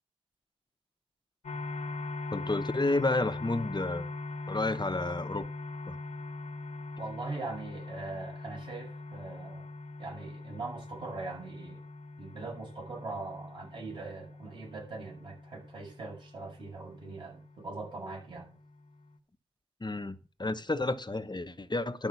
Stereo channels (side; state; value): both; normal; correlation 0.68